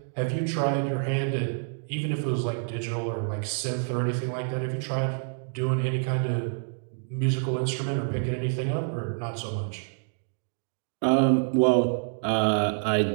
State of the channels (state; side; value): silent; left; digital silence